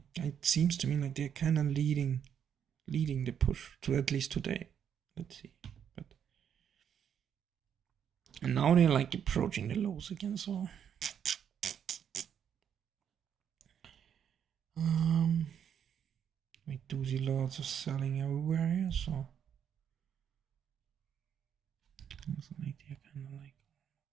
it seems to me like they're kind of leading the push to at least today. Let's see, but and now they're like approaching the lows again. So wait. do see lots of selling everywhere here, so also like they're kind of like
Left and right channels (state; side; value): quieter; left; 8.5 dB